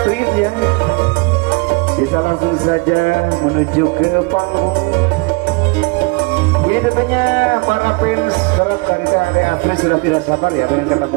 ya. Bisa langsung saja menuju ke panggung. Ini tentunya para fans berat dari Teh Ade Astrid sudah tidak sabar ya pengen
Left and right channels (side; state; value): left; quieter; 28.6 dB